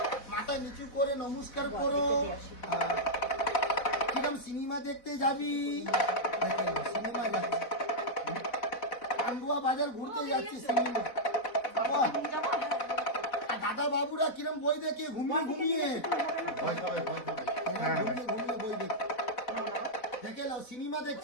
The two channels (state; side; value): late; right; 4.0 ms